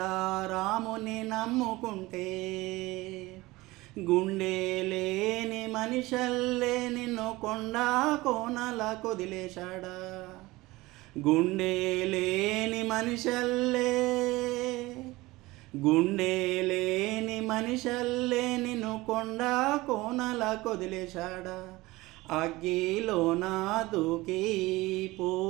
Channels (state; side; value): quieter; left; 20.2 dB